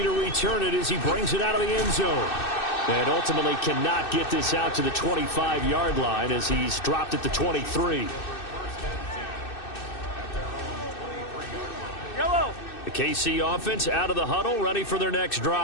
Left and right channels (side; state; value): right; late; 2.6 ms